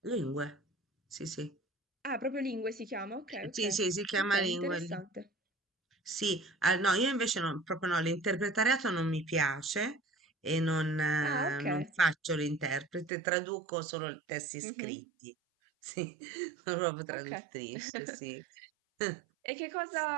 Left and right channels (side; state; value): left; drops out; at 13.1 s